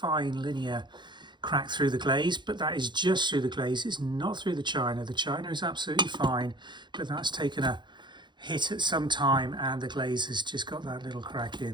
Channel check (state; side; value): late; left; 0.22 ms